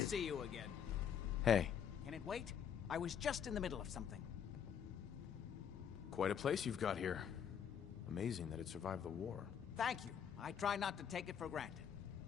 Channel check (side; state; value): right; quieter; 8.1 dB